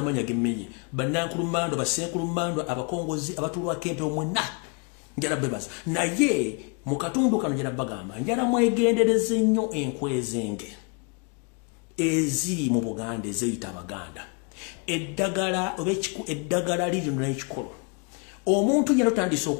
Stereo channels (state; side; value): quieter; right; 34.1 dB